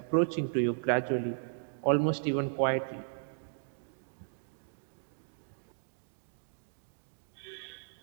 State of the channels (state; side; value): silent; left; digital silence